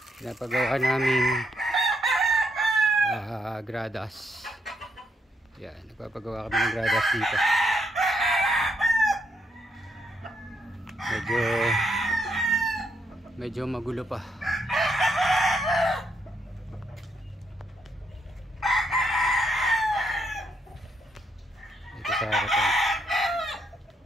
pinapagawa naming gradas. Yan, nagpapagawa kami ng gradas dito. Medyo magulo pa. Ito sa harapan.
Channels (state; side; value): normal; both; correlation 0.77